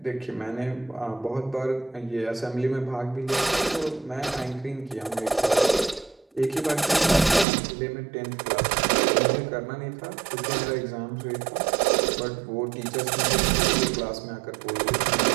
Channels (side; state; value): left; drops out; at 7.5 s